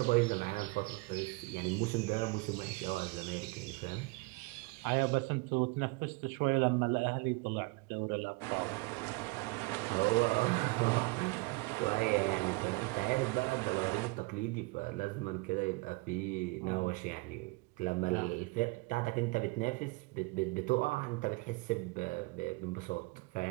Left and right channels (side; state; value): left; quieter; 26.1 dB